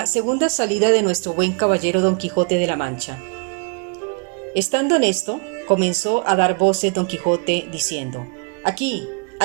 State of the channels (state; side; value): quieter; left; 39.3 dB